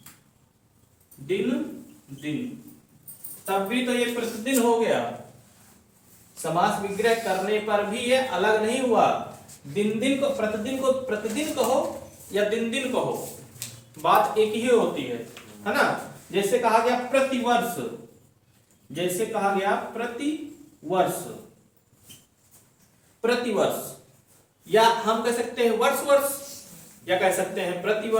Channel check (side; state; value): both; identical; correlation 1.00